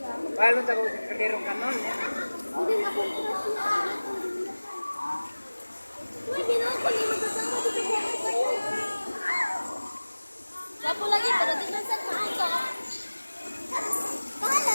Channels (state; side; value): inverted; both; correlation -1.00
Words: Balon ta ko kadero kanon. Hindi nga po Pwede na ako hindi magkasama dito sa kayo. Gapo lagi, pero di na sa maaga. Bahala